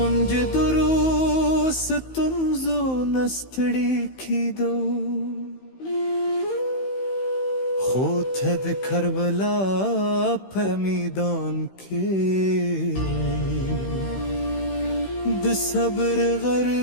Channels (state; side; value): late; right; 15 ms